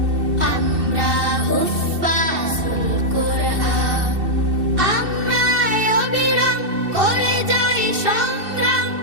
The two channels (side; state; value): left; late; 2.7 ms